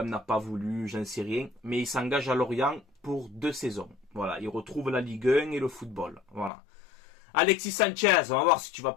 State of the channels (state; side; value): drops out; right; at 6.5 s